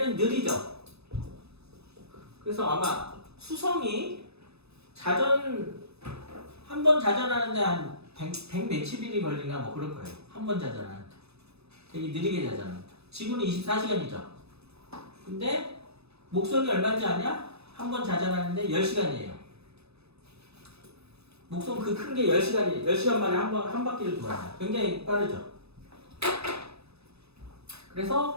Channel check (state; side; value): late; left; 0.79 ms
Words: 느리죠? 그래서 아마 수성이 한 번 자전하는데 한 100 몇십 일이 걸리나 뭐 그럴 거예요. 한 번 자전하는데. 되게 느리게 자전합니다. 지구는 24시간이죠. 근데 목성이 얼마인지 아냐? 한 번 자전하는데 10시간이에요. 목성 그 큰 게 10시간 만에 한 바퀴를 돌아요. 굉장히 빠르죠.